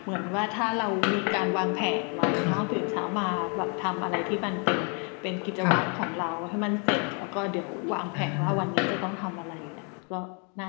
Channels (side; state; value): right; quieter; 37.2 dB